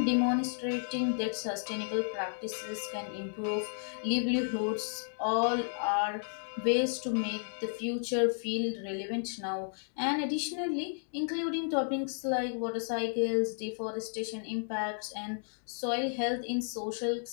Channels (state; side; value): silent; right; digital silence